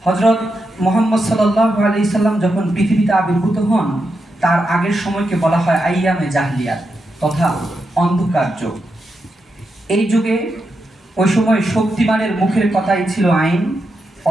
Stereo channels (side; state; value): both; normal; correlation 0.86